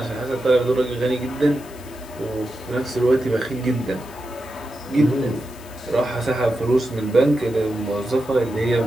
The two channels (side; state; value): left; noise; hiss, 21 dB below the sound